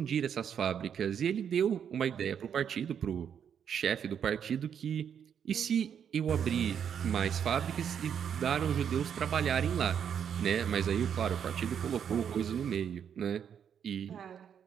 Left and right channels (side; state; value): left; quieter; 8.2 dB